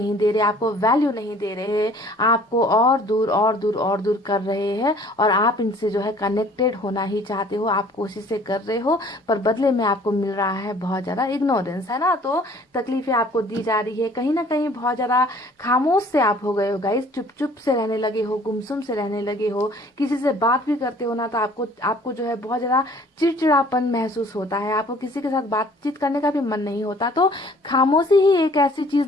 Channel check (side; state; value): both; normal; correlation 0.54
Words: दे रहे, आपको वैल्यू नहीं दे रहे, आपको और दूर और दूर और दूर कर रहे हैं। और आप इनसे जो है कनेक्टेड होना ही चाहते हो, आप कोशिशें कर रहे हो, पर बदले में आपको मिल रहा है बहुत ज्यादा इग्नोरेंस, है ना। तो तकलीफें आपको दी जा रही है, कहीं ना कहीं बहुत ज्यादा खामोश से आप हो गए हो गाइस, चुप चुप से रहने लगे हो, गुमसुम से रहने लगे हो। किसी से बात भी करते हो ना तो आपको जो है बहुत ज्यादा चिड़चिड़ापन महसूस होता है, आपको किसी के साथ बातचीत करने का भी मन नहीं होता। तो खामोशी ही एक ऐसी